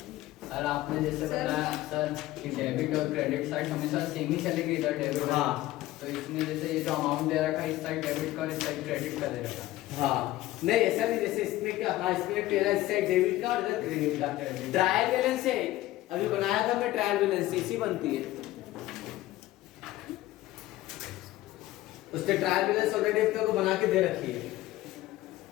सर आपने जैसे बताया सर कि डेबिट और क्रेडिट साइड हमेशा सेम ही चलेगी इधर डेबिट। हाँ। तो इसमें जैसे ये जो अमाउंट दे रखा है इस साइड डेबिट का और इस साइड क्रेडिट का दे रखा है। हाँ नहीं ऐसा नहीं। जैसे इसमें क्या? हाँ इसमें तेरा इस साइड डेबिट का और इधर क्रेडिट का। ट्रायल बैलेंस है। अभी बनाया था मैं ट्रायल बैलेंस, इसी बनती है। उसने ट्रायल बैलेंस ऑलरेडी अपने को बना के दे रखी है।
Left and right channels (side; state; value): right; quieter; 16.2 dB